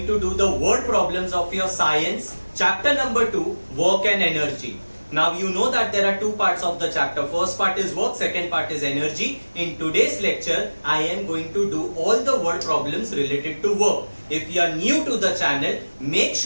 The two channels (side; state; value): both; inverted; correlation -1.00